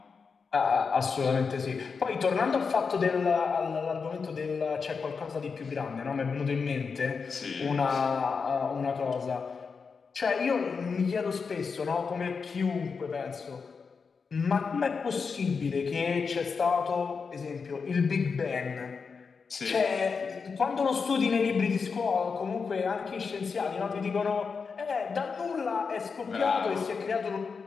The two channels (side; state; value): right; quieter; 5.3 dB